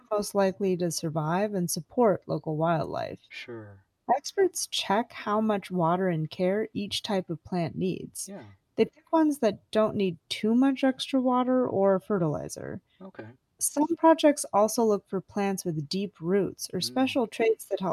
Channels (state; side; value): identical; both; correlation 1.00